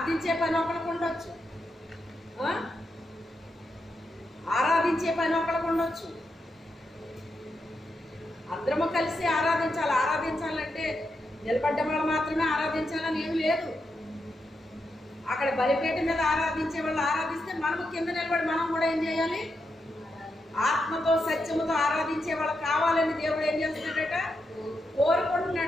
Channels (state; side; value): normal; both; correlation 0.85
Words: పని ఒకరికి ఉండొచ్చు, ఆరాధించే పని ఒకరికి ఉండొచ్చు. అందరము కలిసి ఆరాధించాలి. ఆరాధించాలంటే నిలబడ్డ వాళ్ళు మాత్రమే ఆరాధించాలని ఏమి లేదు. అక్కడ బలిపేట మీద ఆరాధించే వాళ్ళు ఆరాధిస్తే మనము కింద నిలబడి మనం కూడా ఏం చేయాలి? ఆత్మతో సత్యముతో ఆరాధించే వాళ్ళు కావాలని దేవుడు ఏం చేస్తున్నాడట?